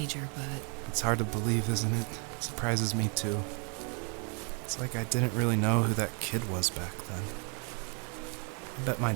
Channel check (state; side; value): quieter; left; 37.5 dB